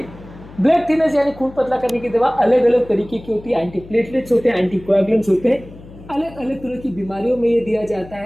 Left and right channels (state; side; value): noise; left; hum, 19 dB below the sound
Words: ब्लड थिनर्स यानी खून पतला करने की दवा अलग अलग तरीके की होती है। एंटीप्लेटलेट्स होते हैं, एंटीकोएगुलेंट्स होते हैं। अलग अलग तरह की बीमारियों में ये दिया जाता